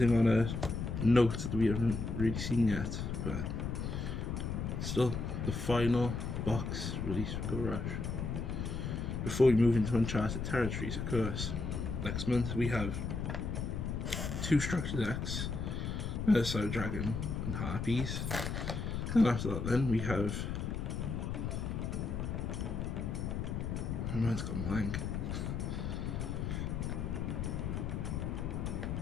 on a note that we haven't really seen yet, but still the final box release for Go Rush. Before we move into uncharted territories, of course, next month we have 2 structure decks, Side Dragon and Harpies, and after that then we have, my mind's gone blank.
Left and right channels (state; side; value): noise; left; rumble, 3 dB below the sound